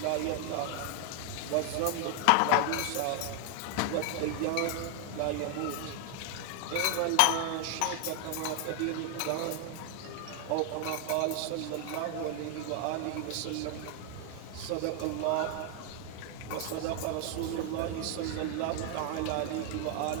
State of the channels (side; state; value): both; different; correlation 0.00